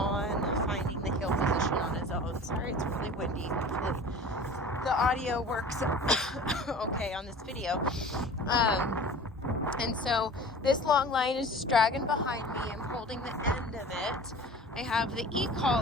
finding the heel position on his own. Sorry, it's really windy. Hopefully the audio works okay on this video. And so this long line is just dragging behind me. I'm holding the end of it. I have the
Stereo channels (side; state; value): both; normal; correlation 0.40